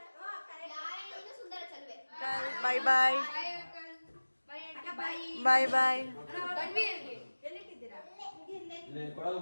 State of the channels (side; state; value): both; inverted; correlation -1.00